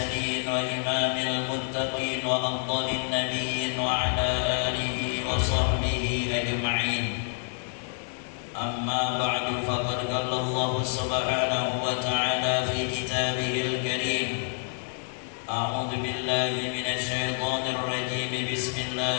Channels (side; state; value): right; silent; 57 dB below the other